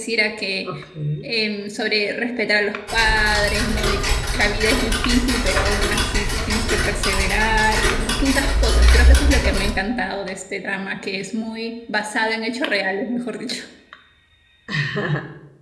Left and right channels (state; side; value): identical; both; correlation 1.00